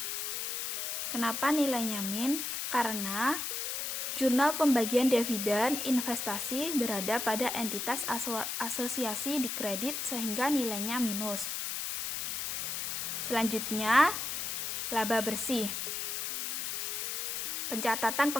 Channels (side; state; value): left; noise; hiss, 2 dB below the sound